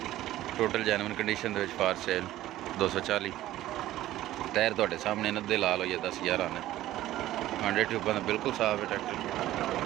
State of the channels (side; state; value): left; quieter; 14.6 dB